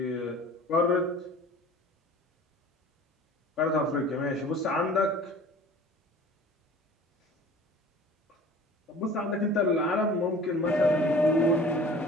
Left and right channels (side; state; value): both; normal; correlation 0.45